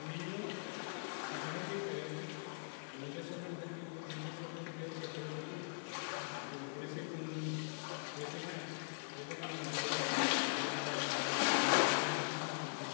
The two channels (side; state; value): right; silent; digital silence